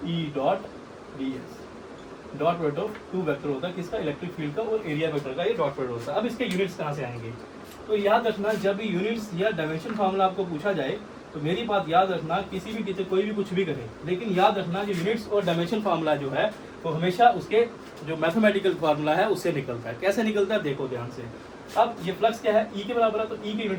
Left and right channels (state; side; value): identical; both; correlation 1.00